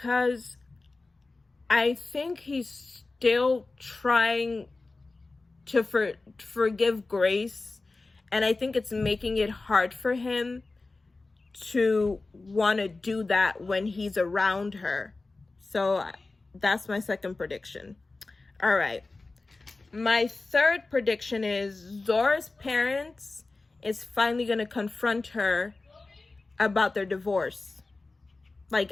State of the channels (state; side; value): quieter; right; 3.5 dB